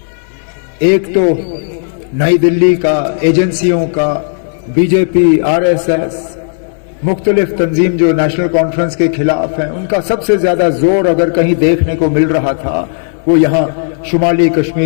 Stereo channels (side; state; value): right; silent; digital silence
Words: एक तो नई दिल्ली का, एजेंसियों का, बीजेपी, आरएसएस, मुख्तलिफ तंजीम जो नेशनल कॉन्फ्रेंस के खिलाफ हैं, उनका सबसे ज्यादा जोर अगर कहीं देखने को मिल रहा था वो यहाँ शुमाली